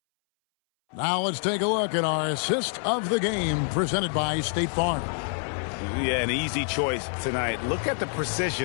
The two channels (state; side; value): silent; right; 61 dB below the other